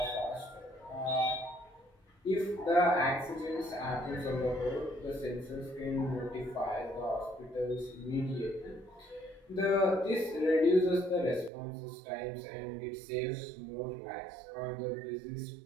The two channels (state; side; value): drops out; left; at 11.5 s